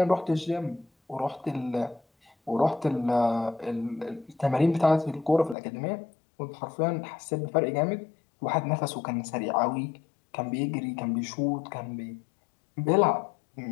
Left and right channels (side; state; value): right; drops out; at 5.6 s